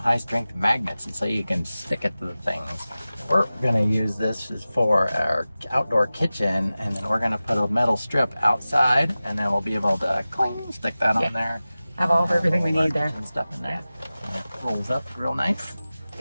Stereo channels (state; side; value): inverted; both; correlation -0.97